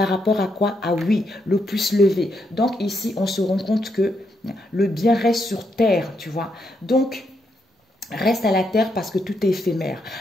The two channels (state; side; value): normal; both; correlation 0.79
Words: rapport à quoi? Ah oui, le pouce levé. Donc ici, on se rend compte que le bien reste sur terre, tu vois. Donc, reste à la terre parce que tout est éphémère.